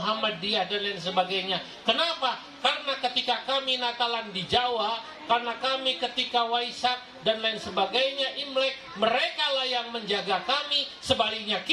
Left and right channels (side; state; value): both; identical; correlation 1.00